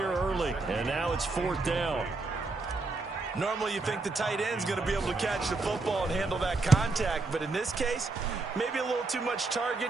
early, and now it's fourth down. Normally you think the tight end's going to be able to catch the football and handle that contact, but in this case, maybe a little too much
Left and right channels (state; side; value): quieter; left; 3.5 dB